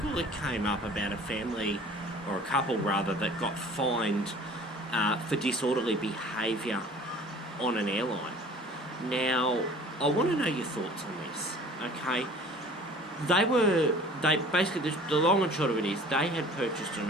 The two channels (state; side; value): normal; both; correlation 0.46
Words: that came up about a family, or a couple rather, that got fined for disorderly behaviour on an airline. Now, I want to know your thoughts on this, okay? They basically, the long and short of it is, they had purchased